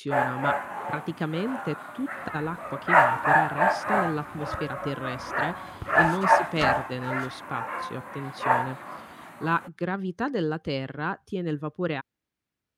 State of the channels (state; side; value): identical; both; correlation 1.00